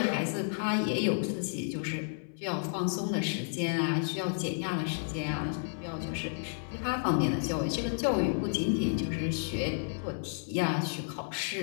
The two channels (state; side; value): silent; right; 57 dB below the other